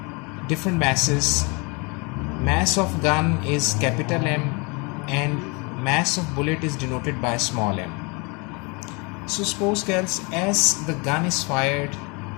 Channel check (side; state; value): right; quieter; 30.0 dB